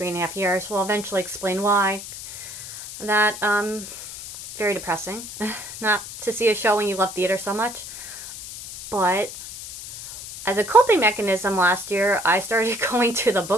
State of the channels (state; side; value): noise; left; hiss, 11 dB below the sound